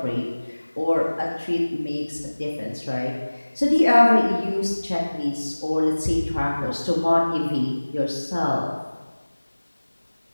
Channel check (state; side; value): inverted; both; correlation -1.00